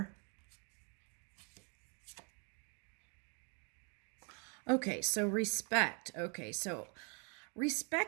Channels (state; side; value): quieter; left; 37.1 dB